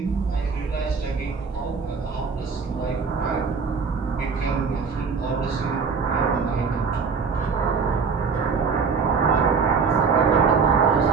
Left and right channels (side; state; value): left; quieter; 5.4 dB